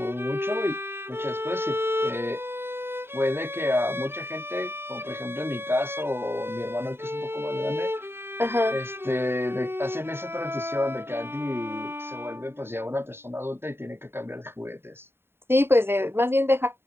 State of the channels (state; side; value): late; left; 0.11 ms